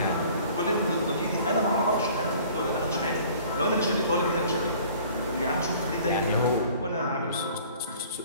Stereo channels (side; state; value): both; inverted; correlation -0.51